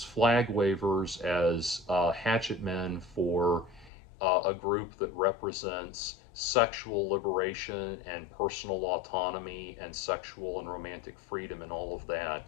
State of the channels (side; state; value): right; drops out; at 3.9 s